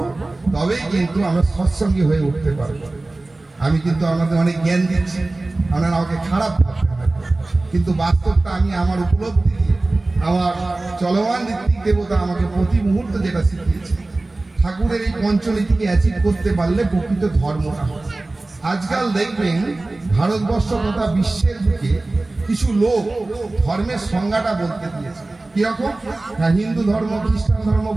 তবেই কিন্তু আমরা সৎসঙ্গী হয়ে উঠতে পারবো। আমি কিন্তু আপনাদের অনেক জ্ঞান দিচ্ছি, আপনারা আমাকে খারাপ ভাবতে হবে, কিন্তু বাস্তবটা আমি আমার উপলব্ধি দিয়ে, আমার চলমান ঋত্বিক দেবতা আমাকে প্রতি মুহূর্তে যেটা শিখিয়েছে, ঠাকুরের এই পঞ্চনীতিকে অ্যাচিভ করতে পারলে প্রকৃত ধর্মটা হয়। আজকাল দেখবেন ভারতবর্ষ তথা বিশ্বের দিকে কিছু লোক ধর্মের সংজ্ঞাটা বলতে দিয়েছে। কিরকম? না, হিন্দু ধর্ম, খ্রিস্টান ধর্ম,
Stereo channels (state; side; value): quieter; left; 3.0 dB